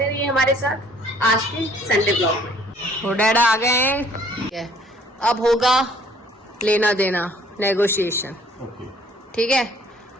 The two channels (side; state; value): both; normal; correlation 0.59